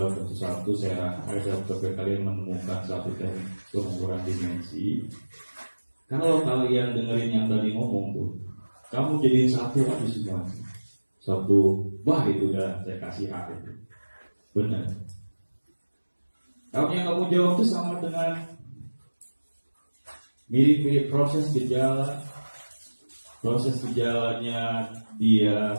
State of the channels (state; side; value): inverted; both; correlation -1.00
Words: satu-satu saya coba kalian menemukan satu teknik pengukuran dimensi. Kalau kalian dengerin yang tadi ngomong tuh, kamu jadiin satu aja semua. Satu, wah itu udah saya kasih hak itu. Benar. Kalau yang kamu jawab itu sama dengan mirip-mirip proses gejalanya dia